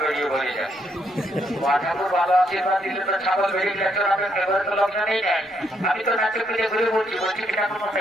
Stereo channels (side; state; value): both; normal; correlation 0.74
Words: বেরিয়ে বলে যায়। ঠাকুর ভালো আশীর্বাদ দিলে তো ছাগল বেরিয়ে গেছে, এবারে তো লক্ষণ নেই নেয়। আমি তো নাচে পিঠে ঘুরে বলছি কি ঠাকুর